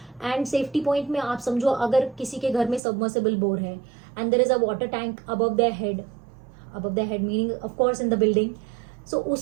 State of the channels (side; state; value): left; drops out; at 2.8 s